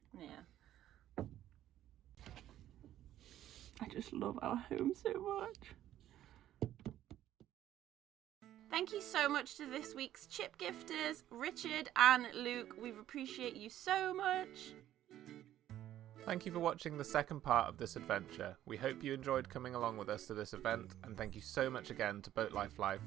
Yeah. I just love our home so much. Thank you so much to this week's chip gifters, Richard and Luke. We appreciate you so much. Thank you for watching the second part of this adventure. We hope you enjoyed coming along with us to this event, and thank you so much again to Boat Life Live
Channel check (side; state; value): left; quieter; 12.5 dB